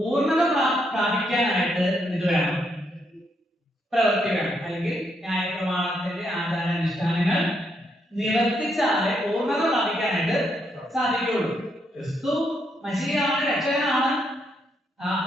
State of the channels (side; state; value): both; normal; correlation 0.77